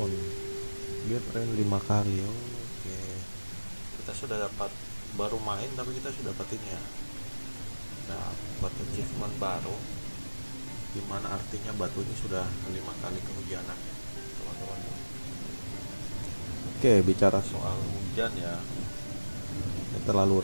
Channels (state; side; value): inverted; both; correlation -1.00